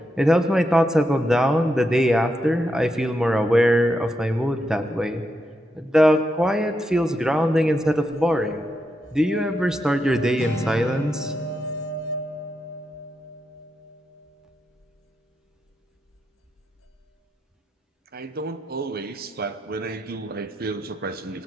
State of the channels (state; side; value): normal; both; correlation 0.84